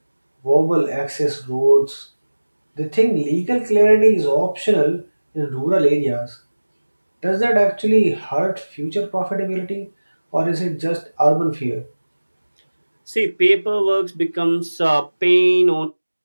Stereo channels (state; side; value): inverted; both; correlation -1.00